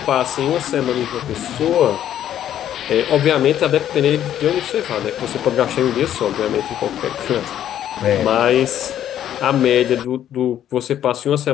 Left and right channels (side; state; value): right; quieter; 10.9 dB